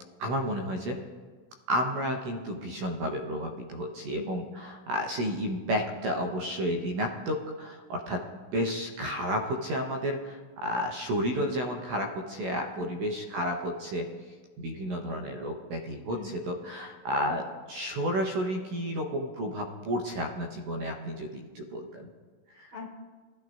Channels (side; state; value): left; late; 16 ms